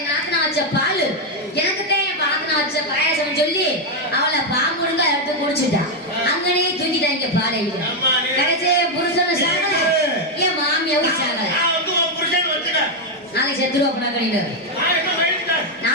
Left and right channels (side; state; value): both; normal; correlation 0.03